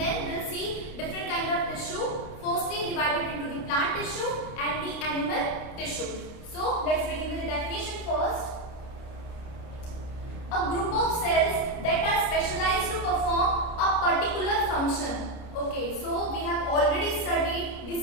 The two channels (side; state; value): right; late; 29 ms